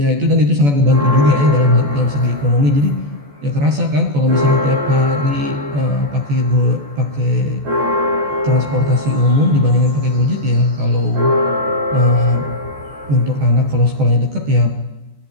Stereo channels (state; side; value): late; left; 14 ms